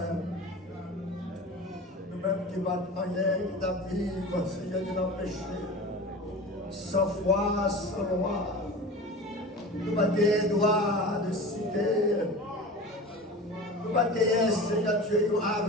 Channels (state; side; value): normal; both; correlation 0.34